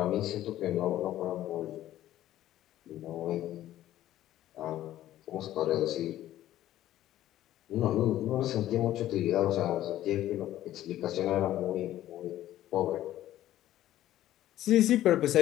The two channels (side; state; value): right; quieter; 13.4 dB